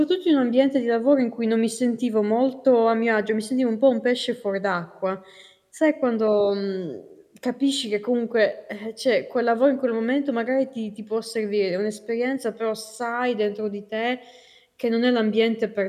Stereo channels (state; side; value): identical; both; correlation 1.00